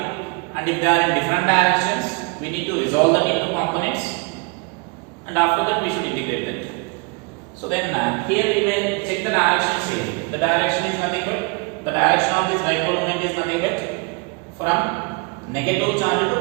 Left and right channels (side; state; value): left; quieter; 30.7 dB